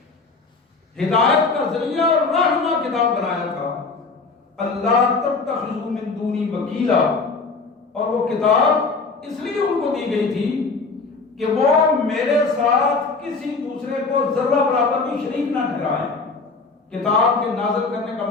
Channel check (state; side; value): quieter; right; 4.2 dB